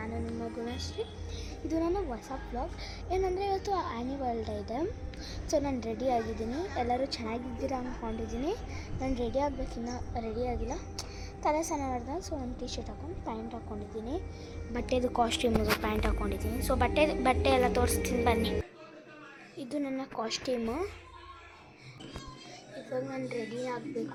ನಿಮ್ಮ ಗುಣಶ್ರೀ. ಇದು ನನ್ನ ಹೊಸ ವ್ಲಾಗ್. ಏನಂದರೆ ಇವತ್ತು ಆ್ಯನಿವಲ್ ಡೇ ಇದೆ. ಸೊ ನಾನು ರೆಡಿ ಆಗಿದ್ದೀನಿ. ಎಲ್ಲರೂ ಚೆನ್ನಾಗಿದ್ದೀರಾ ಅಂದ್ಕೊಂಡಿದ್ದೀನಿ. ನಾನು ರೆಡಿ ಆಗಬೇಕಿನ್ನ ರೆಡಿ ಆಗಿಲ್ಲ. ತಲೆ ಸ್ನಾನ ಮಾಡಿದೆ. ಸೊ ನಾನು ಟೀ ಶರ್ಟ್ ಹಾಕೊಂಡು ಪ್ಯಾಂಟ್ ಹಾಕ್ಕೊಂಡಿದ್ದೀನಿ. ಬಟ್ಟೆದು ಕಾಸ್ಟ್ಯೂಮಿಗೆ ಪ್ಯಾಂಟ್ ಹಾಕ್ಕೊಂಡಿದ್ದೀನಿ. ಸೊ ಬಟ್ಟೆ ಎಲ್ಲ ತೋರಿಸ್ತೀನಿ ಬನ್ನಿ. ಇದು ನನ್ನ ಕಾಸ್ಟ್ಯೂಮು. ಇವಾಗ ನಾನು ರೆಡಿ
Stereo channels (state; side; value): identical; both; correlation 1.00